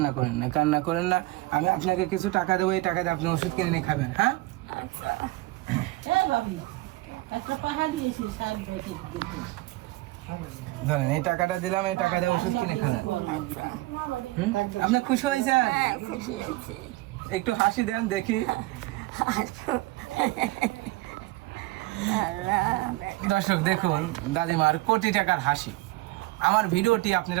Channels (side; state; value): left; quieter; 19.9 dB